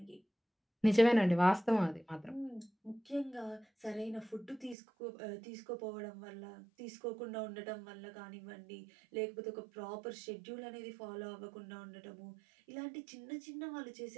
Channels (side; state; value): left; drops out; at 4.8 s